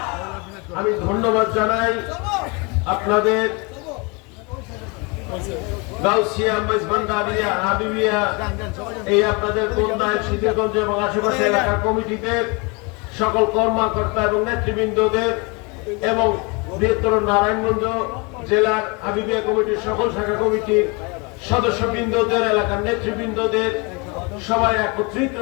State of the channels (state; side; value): quieter; right; 29.7 dB